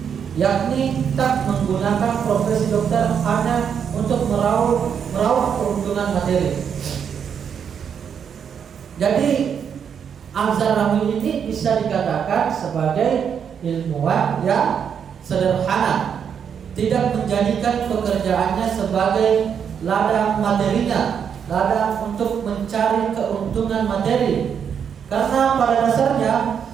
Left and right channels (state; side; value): quieter; left; 7.6 dB